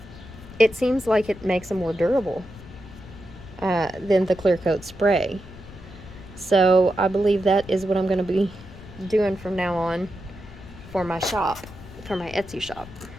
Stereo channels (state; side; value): noise; left; rumble, 17 dB below the sound